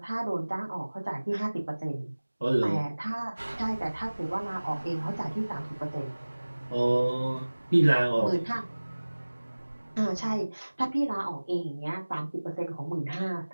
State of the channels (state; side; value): inverted; both; correlation -1.00